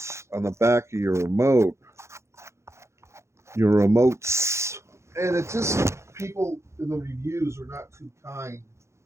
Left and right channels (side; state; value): left; late; 0.14 ms